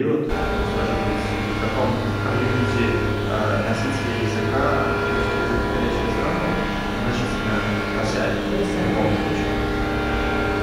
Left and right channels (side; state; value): both; identical; correlation 1.00